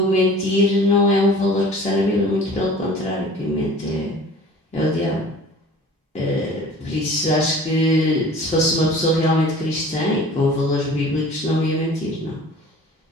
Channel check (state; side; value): normal; both; correlation 0.45